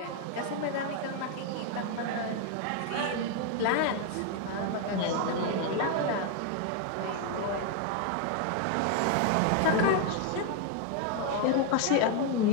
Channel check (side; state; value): both; different; correlation 0.01